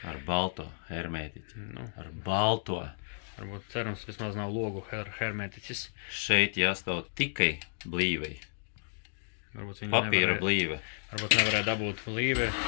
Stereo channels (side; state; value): right; silent; digital silence